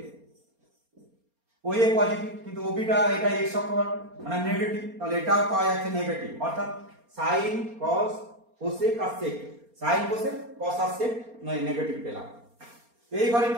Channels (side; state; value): left; late; 4.3 ms